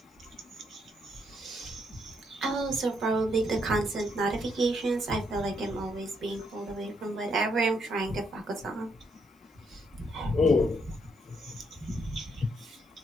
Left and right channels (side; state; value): both; normal; correlation 0.75